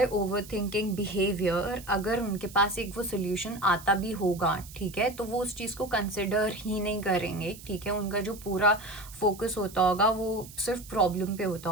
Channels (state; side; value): noise; right; hiss, 17 dB below the sound